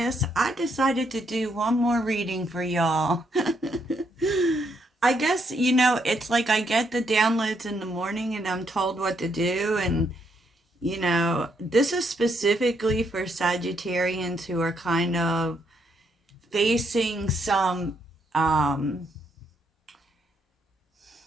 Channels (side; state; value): both; normal; correlation 0.75